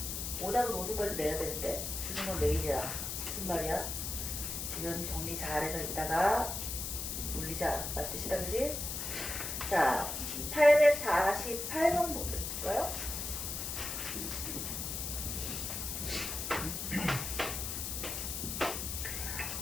오답은 오늘까지 내야 되는데 주는 건 내일이야. 무슨 말이야? 지금 정리 잘해서 이따가 올리자. 맞듯이다, 그지? 자, 848번 볼까요?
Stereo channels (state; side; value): noise; left; hiss, 4 dB below the sound